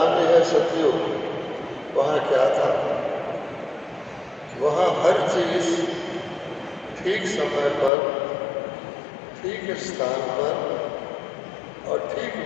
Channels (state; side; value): drops out; right; at 7.9 s